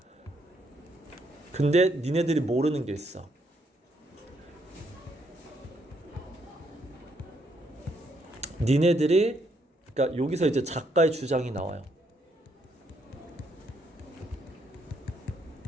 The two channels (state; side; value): normal; both; correlation 0.73